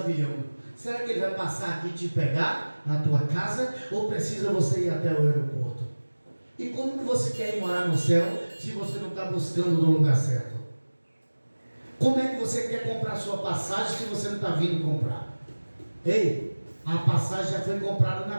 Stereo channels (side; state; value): both; inverted; correlation -1.00